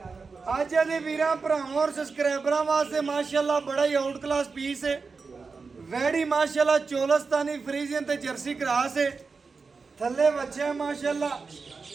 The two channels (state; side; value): quieter; left; 4.6 dB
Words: अज दे वीरां भरावां और सब्सक्राइबरां वास्ते माशाल्लाह बड़ा ही आउट क्लास पीस है। वैडी माशाल्लाह चोलस्तानी फ्रीजियन ते जर्सी क्रॉस है। थल्ले बच्चा माशाल्लाह